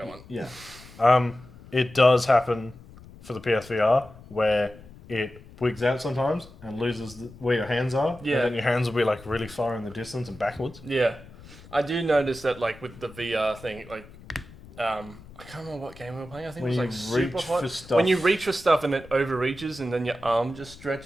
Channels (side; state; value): left; noise; rumble, 20 dB below the sound